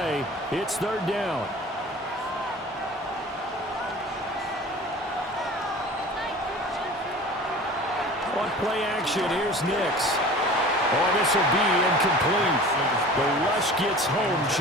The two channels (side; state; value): both; normal; correlation 0.41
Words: It's 3rd down. On play action, here's Nix. Oh, this will be incomplete. The rush gets home